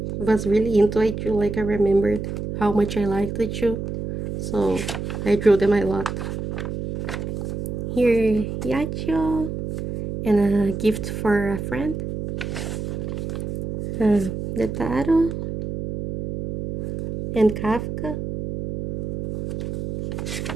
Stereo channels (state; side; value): noise; right; hum, 5 dB below the sound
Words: was really into Aichu, like I remembered how much I liked Aichu. So I drew them a lot. Here, Yachio, and a gift for a friend. Netaro, and Kafka.